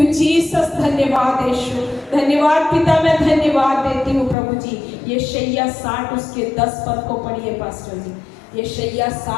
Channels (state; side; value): drops out; right; at 4.4 s